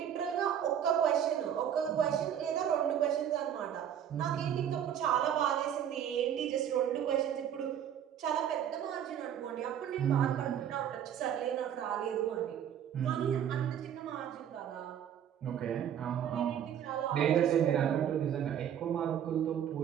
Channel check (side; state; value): left; quieter; 9.5 dB